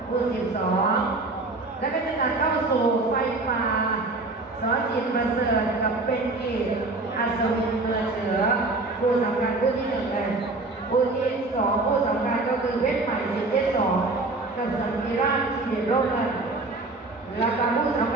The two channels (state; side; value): quieter; left; 3.2 dB